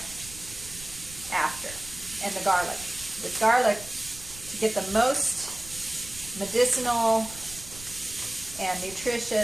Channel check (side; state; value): right; noise; rumble, 16 dB below the sound